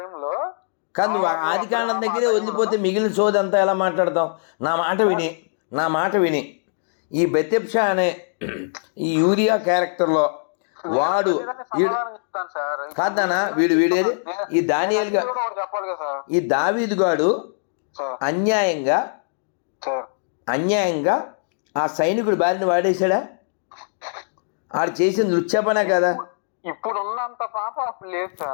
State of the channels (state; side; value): silent; right; digital silence